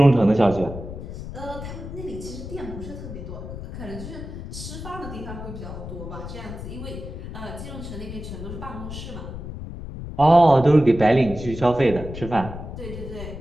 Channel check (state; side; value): noise; left; rumble, 9 dB below the sound